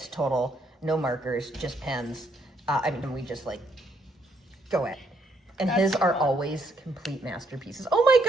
total, no markers, just pens. We just go at it. And his are always complete masterpieces. Oh my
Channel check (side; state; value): both; normal; correlation 0.72